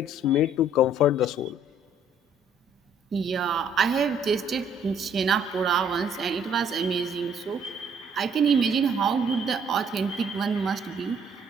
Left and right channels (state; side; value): normal; both; correlation 0.62